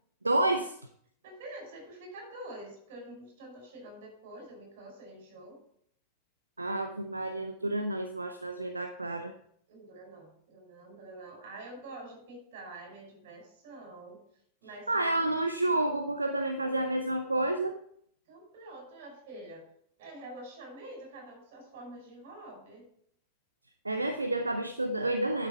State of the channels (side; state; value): both; inverted; correlation -0.78